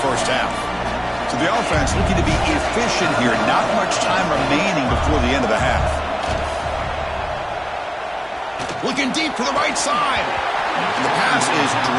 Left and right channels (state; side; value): identical; both; correlation 1.00